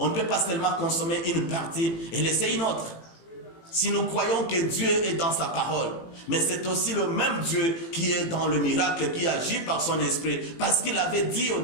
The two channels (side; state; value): right; late; 18 ms